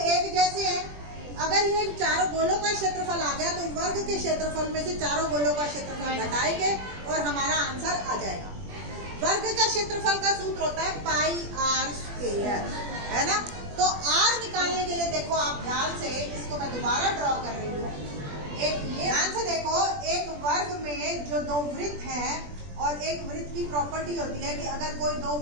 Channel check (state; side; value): late; left; 20 ms